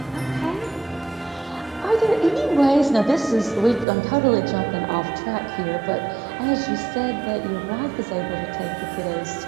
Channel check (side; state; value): left; drops out; at 3.9 s